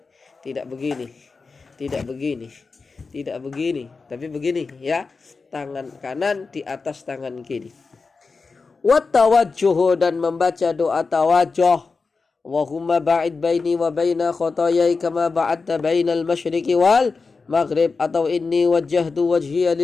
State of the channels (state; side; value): quieter; right; 4.4 dB